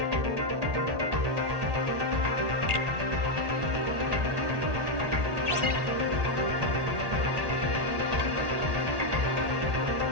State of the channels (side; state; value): left; late; 1.8 ms